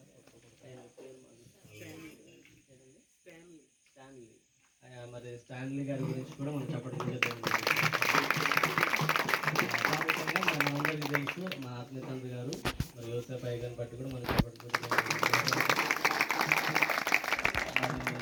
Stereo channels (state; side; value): identical; both; correlation 1.00